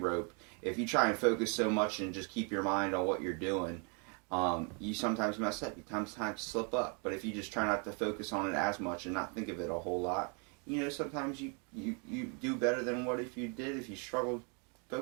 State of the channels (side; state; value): left; quieter; 36.3 dB